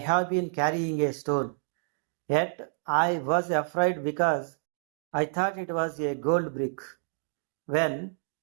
been carrying a stone. Yet I was afraid because I thought it was a gold brick." When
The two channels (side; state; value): left; silent; digital silence